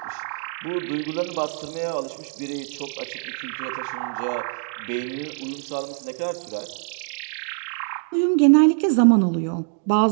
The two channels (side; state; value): left; silent; digital silence